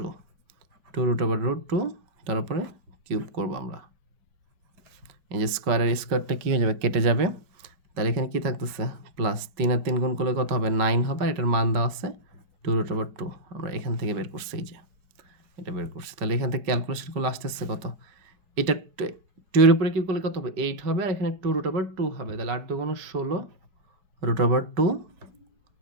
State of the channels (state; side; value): late; left; 5.3 ms